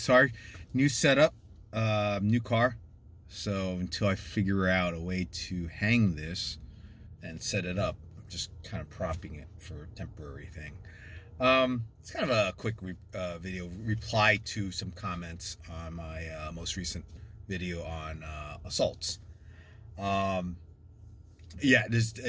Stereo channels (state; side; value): identical; both; correlation 1.00